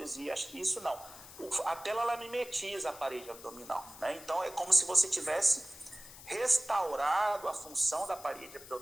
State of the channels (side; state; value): left; noise; hiss, 17 dB below the sound